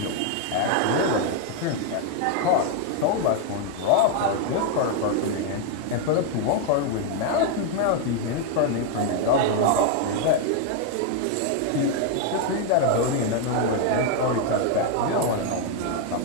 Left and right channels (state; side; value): different; both; correlation 0.00